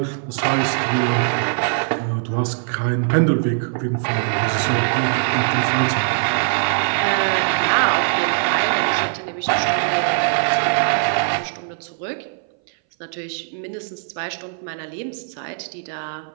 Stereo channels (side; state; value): left; silent; 61 dB below the other